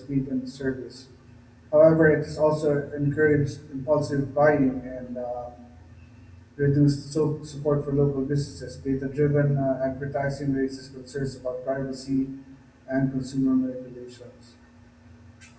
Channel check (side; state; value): both; identical; correlation 1.00